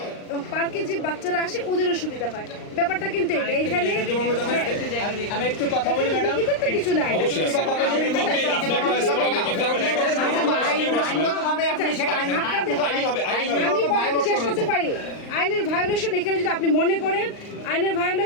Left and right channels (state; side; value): late; right; 39 ms